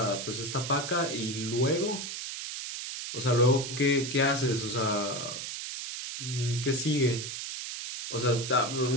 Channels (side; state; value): right; noise; hiss, 6 dB below the sound